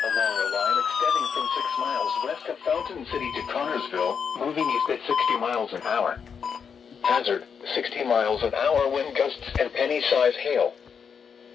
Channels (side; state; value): right; quieter; 6.6 dB